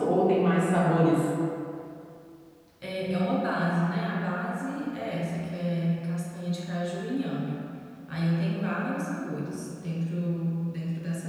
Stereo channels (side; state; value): both; identical; correlation 1.00